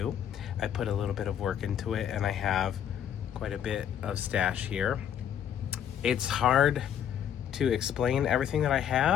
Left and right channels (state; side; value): quieter; right; 9.5 dB